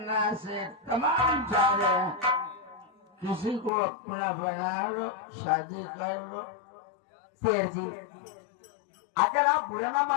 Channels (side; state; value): right; drops out; at 3.7 s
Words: सेठ तमाम जा रहे हैं, किसी को अपना बना लो, शादी कर लो। शेर जी अगर आप बुरा ना